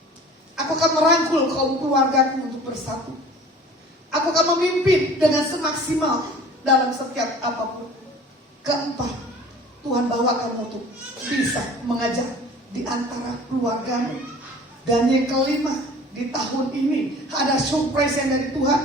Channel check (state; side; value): normal; both; correlation 0.45